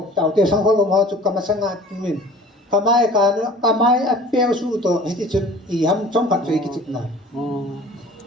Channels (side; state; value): both; normal; correlation 0.45